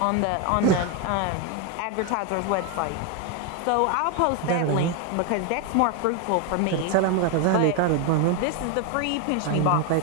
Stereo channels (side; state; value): both; different; correlation 0.01